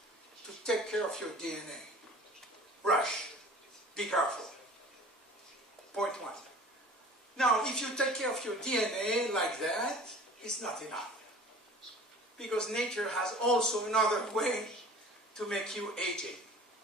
to take care of your DNA. Rush. Be careful. Point one. Now, if you take care of your DNA like that, it's not enough. Because nature has also another way to make you aging.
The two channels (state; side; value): normal; both; correlation 0.44